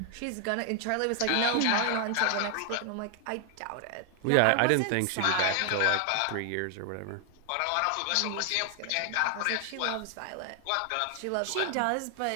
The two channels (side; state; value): both; different; correlation 0.00